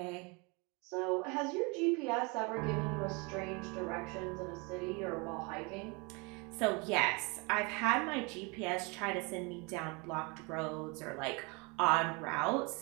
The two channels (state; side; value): quieter; left; 29.6 dB